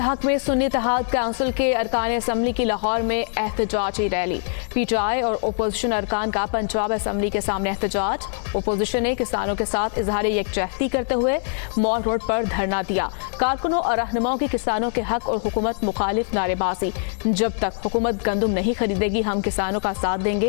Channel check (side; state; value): right; silent; 63 dB below the other